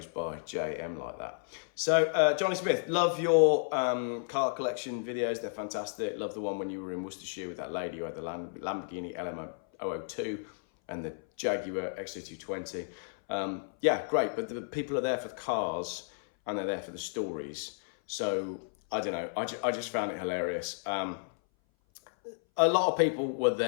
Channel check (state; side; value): silent; right; 56 dB below the other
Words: by JayEmm like that. So Johnny Smith, love your car collection videos. They're fantastic. Love the one when you were in Worcestershire with that lady who had the Lamborghini LM002 and the Jaguar XC220. Yeah, great. But the people are there for the cars and they're there for the stories. So I don't know. I just found it hilarious. A lot of people were